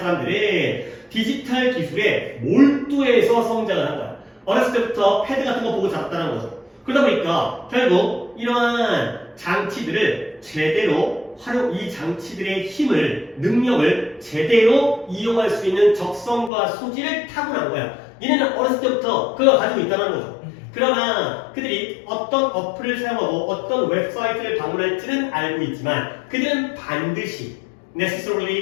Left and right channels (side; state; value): right; drops out; at 16.5 s